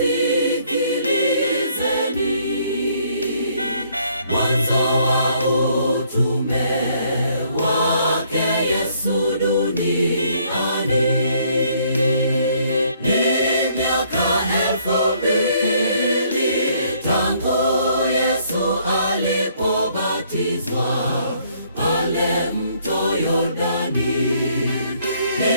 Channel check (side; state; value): both; inverted; correlation -0.65